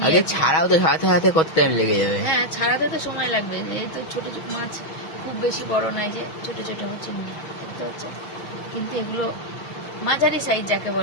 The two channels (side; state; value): right; late; 6.3 ms